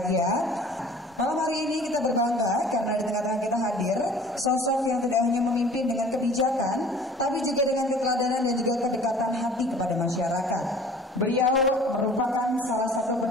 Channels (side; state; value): both; normal; correlation 0.48